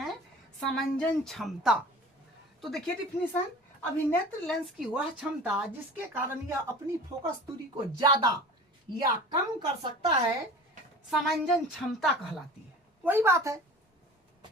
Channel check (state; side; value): normal; both; correlation 0.40